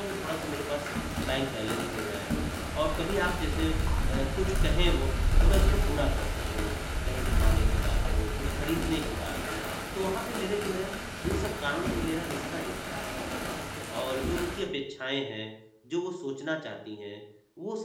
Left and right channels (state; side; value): identical; both; correlation 1.00